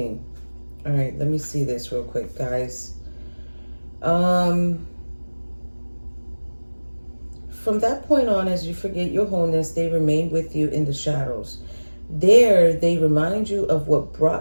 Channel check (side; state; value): both; inverted; correlation -1.00